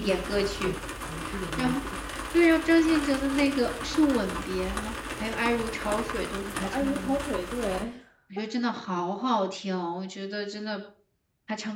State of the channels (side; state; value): both; identical; correlation 1.00